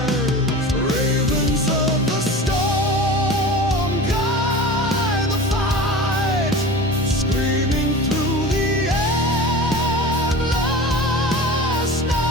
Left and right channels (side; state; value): both; normal; correlation 0.35